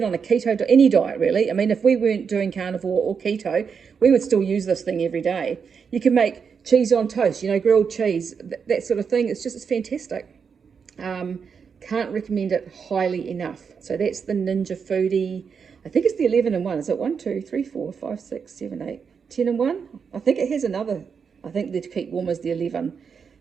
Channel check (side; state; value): left; quieter; 6.3 dB